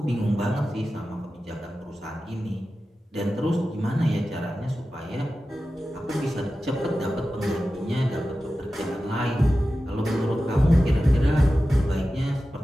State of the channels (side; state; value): both; normal; correlation 0.94